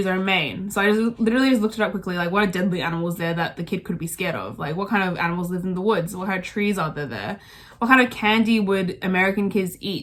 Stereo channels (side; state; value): both; identical; correlation 1.00